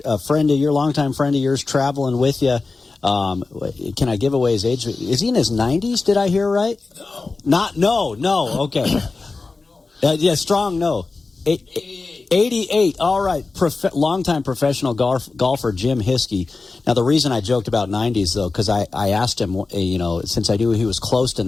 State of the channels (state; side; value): quieter; right; 3.9 dB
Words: friend of your, longtime friend of yours, traveling with you. Can I give away his age? Is he in his 90s? Did I hear right? No. No. Okay. Yeah, strong no. 88. All right. Longtime professional golfer Jim Hiskey. Now, the reason I joked about 90s, though, because I asked him, since I knew he was close to